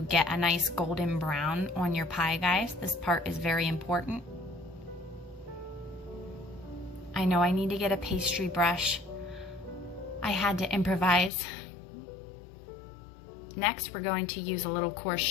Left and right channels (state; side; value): drops out; right; at 11.3 s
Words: get a nice golden brown on your pie, guys. This part is very important. I know I need to get a pastry brush. I had to improvise. Next, we're going to use a little coarse